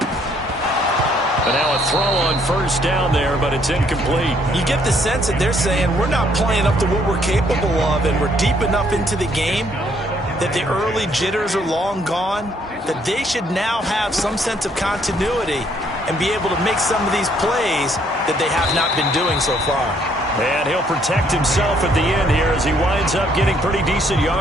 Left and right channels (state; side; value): normal; both; correlation 0.67